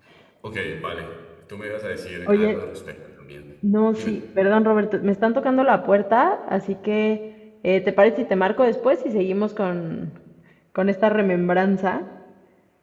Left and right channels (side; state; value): both; identical; correlation 1.00